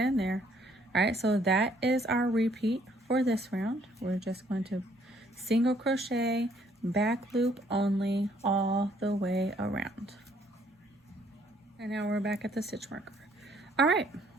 there. All right, so that is our repeat for this round. We're just going to single crochet, back loop only, all the way around. And now we're back at the stitch marker. All right,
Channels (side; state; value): both; normal; correlation 0.65